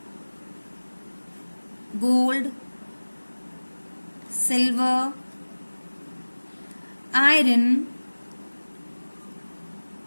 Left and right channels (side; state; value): both; inverted; correlation -1.00